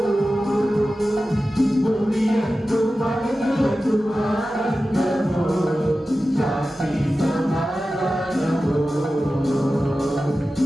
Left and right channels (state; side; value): normal; both; correlation 0.94